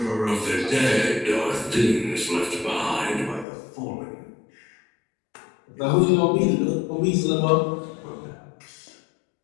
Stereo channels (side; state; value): right; drops out; at 3.5 s